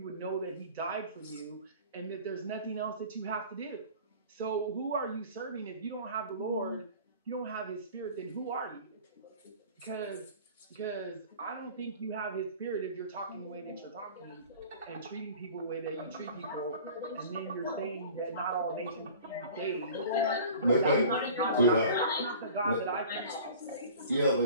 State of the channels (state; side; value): inverted; both; correlation -0.43